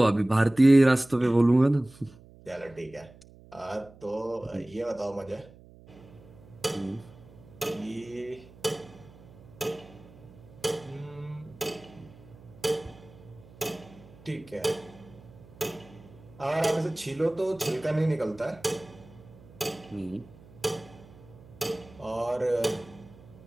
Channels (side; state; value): right; noise; hum, 22 dB below the sound